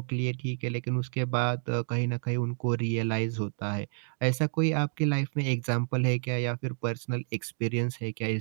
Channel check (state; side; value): silent; left; digital silence